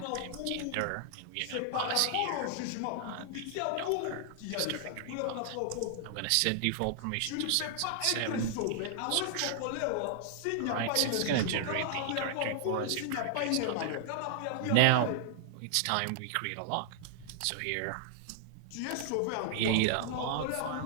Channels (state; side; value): different; both; correlation -0.01